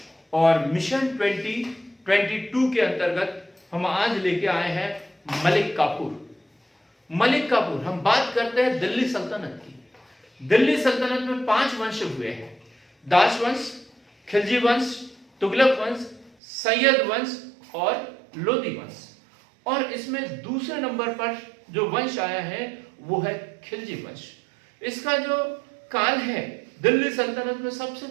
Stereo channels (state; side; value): drops out; left; at 16.4 s